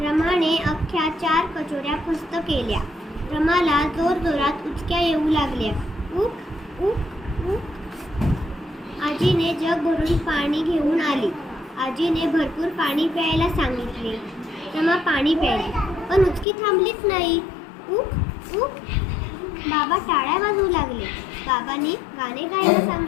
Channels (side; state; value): right; drops out; at 16.4 s